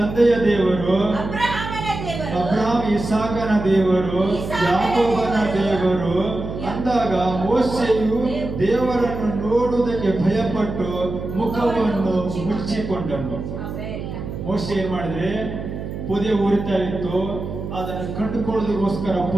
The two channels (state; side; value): noise; right; hum, 7 dB below the sound